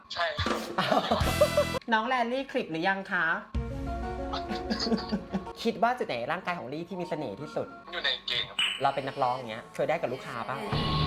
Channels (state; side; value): identical; both; correlation 1.00